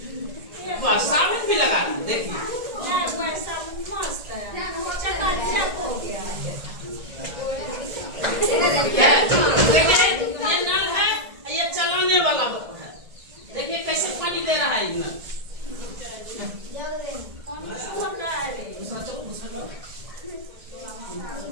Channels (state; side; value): late; left; 1.7 ms